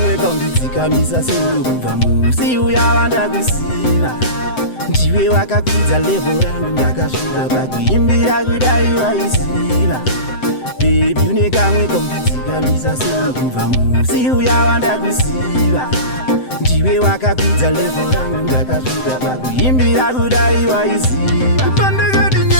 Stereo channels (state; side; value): late; right; 7.8 ms